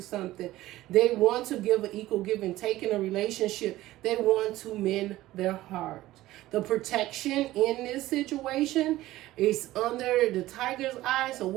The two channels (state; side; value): quieter; left; 16.2 dB